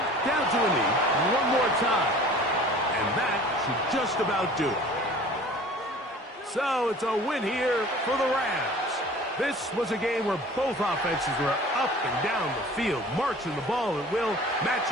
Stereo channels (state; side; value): normal; both; correlation 0.45